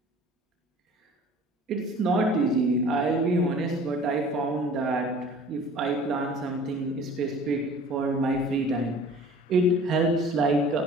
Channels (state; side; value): normal; both; correlation 0.47